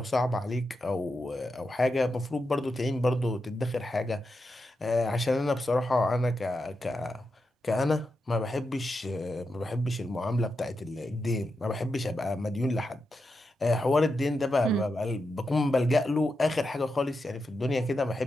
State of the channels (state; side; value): normal; both; correlation 0.87